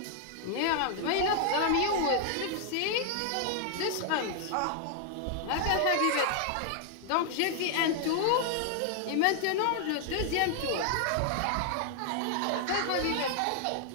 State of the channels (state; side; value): different; both; correlation 0.00